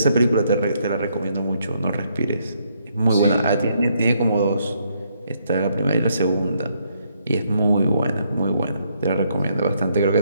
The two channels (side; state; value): both; inverted; correlation -0.73